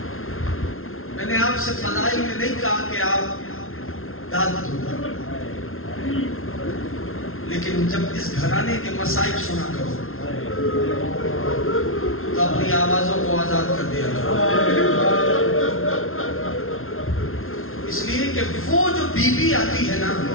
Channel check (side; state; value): right; late; 0.61 ms